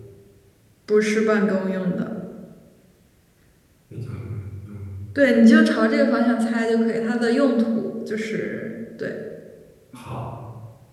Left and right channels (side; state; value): both; identical; correlation 1.00